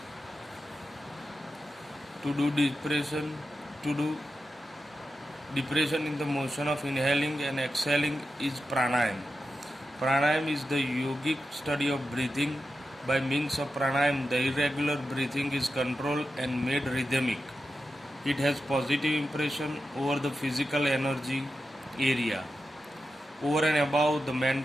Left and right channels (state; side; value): normal; both; correlation 0.90